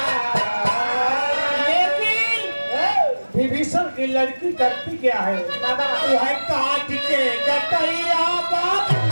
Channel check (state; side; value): inverted; both; correlation -1.00